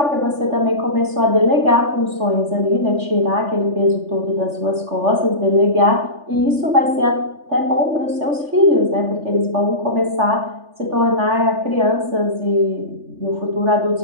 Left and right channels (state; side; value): late; left; 3.4 ms